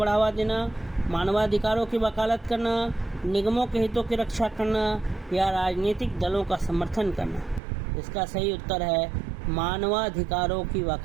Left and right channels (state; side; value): drops out; left; at 7.6 s